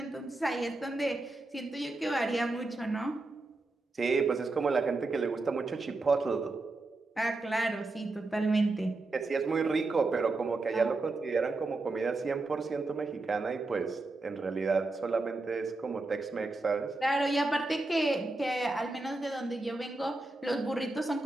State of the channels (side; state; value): left; quieter; 3.1 dB